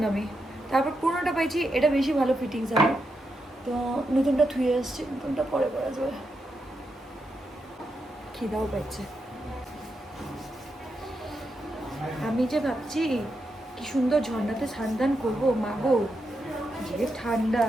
না আমি, তারপর পুরোনোটা পাইছি, এটা বেশি ভালো ফিটিংস আমার, তো নতুনটা থুয়ে আসছে, নতুনটা পরে পরা যাবে। খিদাও পাইছে। আমি যে ভাবছি কি সুন্দর ঝর্ণাতে স্নান করবো, মাগো যে ঠান্ডা,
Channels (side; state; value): both; normal; correlation 0.85